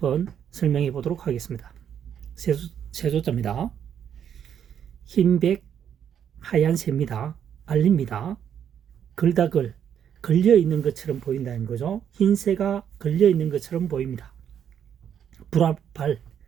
설명해 보도록 하겠습니다. 세조자입니다. 흰백 하얀 새입니다. 알립니다. 글다글 걸려 있는 것처럼 보인다는 거죠. 흰새가 걸려 있는 것처럼 보입니다. 불화발,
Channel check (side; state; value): left; quieter; 8.9 dB